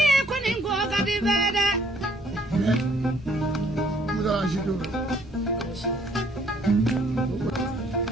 kuningo gadi bede. Muda shido.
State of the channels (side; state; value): both; normal; correlation 0.63